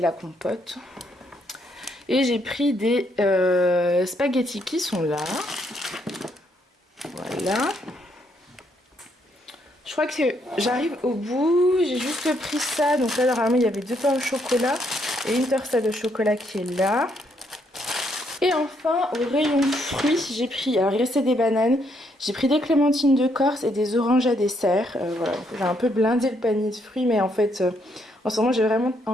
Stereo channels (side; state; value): both; normal; correlation 0.73